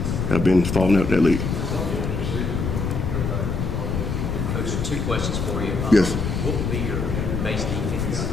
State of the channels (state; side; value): noise; left; rumble, 2 dB below the sound